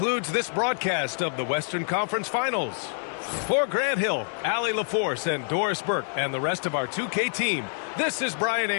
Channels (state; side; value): silent; right; digital silence